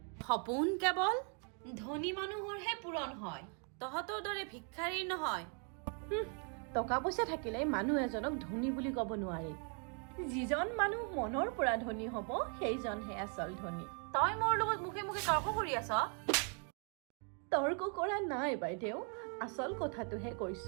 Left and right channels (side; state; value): left; quieter; 40.0 dB